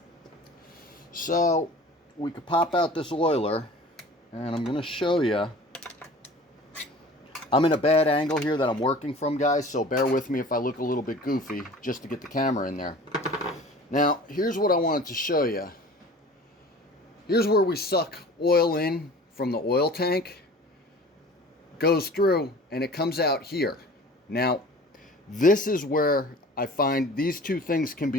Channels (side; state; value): both; normal; correlation 0.43